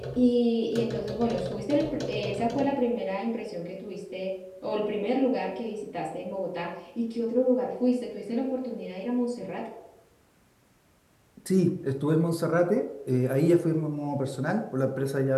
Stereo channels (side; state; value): both; identical; correlation 1.00